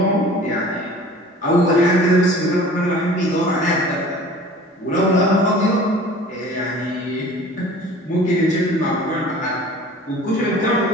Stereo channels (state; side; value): normal; both; correlation 0.45